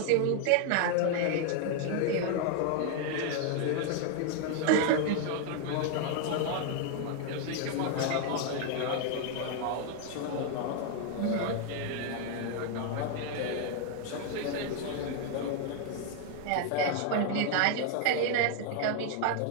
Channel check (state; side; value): different; both; correlation 0.00